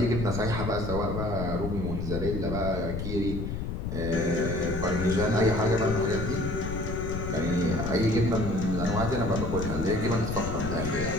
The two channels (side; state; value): left; noise; rumble, 4 dB below the sound